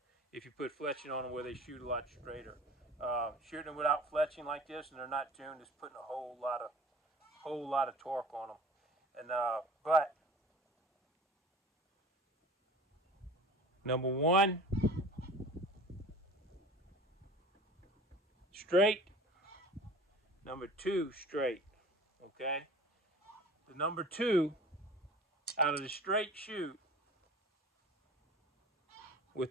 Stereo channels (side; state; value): both; normal; correlation 0.42